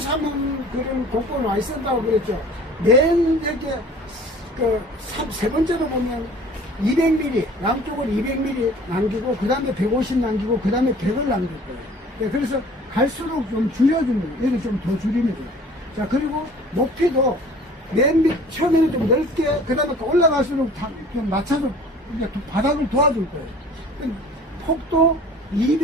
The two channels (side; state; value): both; normal; correlation 0.47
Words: 그런 곡고 많이 쓴다고 그랬죠. 맨 여기, 세 번째로 보면 200mm, 양쪽을 200mm 남기고, 그 다음에 150 남기고, 그 다음에 100을 남길 거예요. 네, 그래서 갈수록 좀 줄여줍니다. 얘를 좀 더 줄입니다. 자, 그리고 높이도 맨 밑, 처음에는 좀 넓게, 그 다음에 올라갈수록 좀 낮춰서 이제 바닥을 도와줄 거예요. 폭도